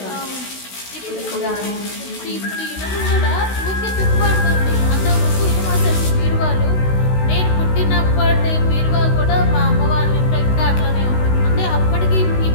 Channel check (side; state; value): right; late; 16 ms